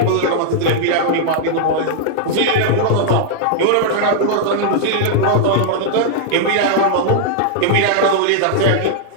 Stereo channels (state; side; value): different; both; correlation -0.01